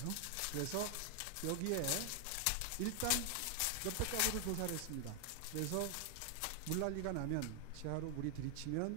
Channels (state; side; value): different; both; correlation 0.00